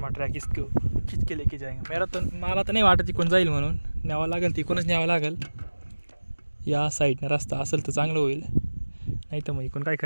ट्रॅक इसको खिच के लेके जाएंगे मेरा तर मला तर नाही वाटत तिकडून जाईल म्हणून न्यावं लागेल तिकडूनच न्यावं लागेल. या साईडनं रस्ता असेल तर चांगलं होईल नाही तर मग इकडून काय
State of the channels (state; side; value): inverted; both; correlation -1.00